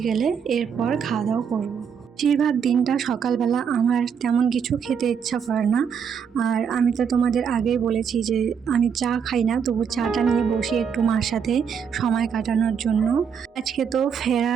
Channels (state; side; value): quieter; left; 7.1 dB